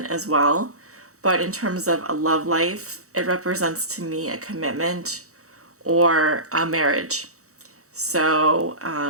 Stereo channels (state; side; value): late; left; 0.65 ms